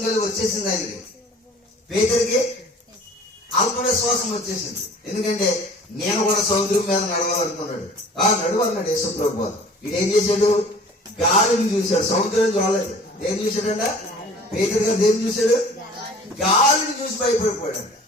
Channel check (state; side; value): normal; both; correlation 0.48